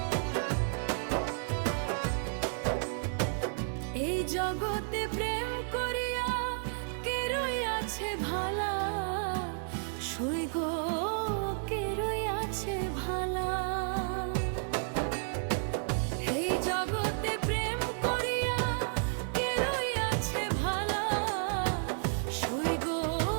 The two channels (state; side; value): silent; left; digital silence